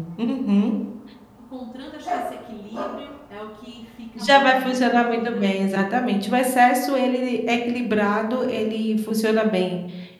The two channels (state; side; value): identical; both; correlation 1.00